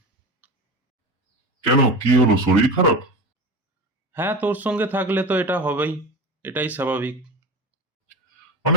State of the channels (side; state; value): both; normal; correlation 0.27